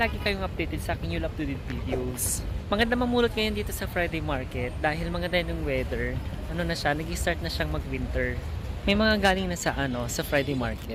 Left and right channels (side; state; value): both; identical; correlation 1.00